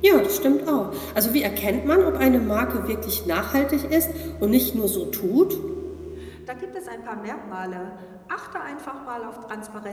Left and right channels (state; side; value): identical; both; correlation 1.00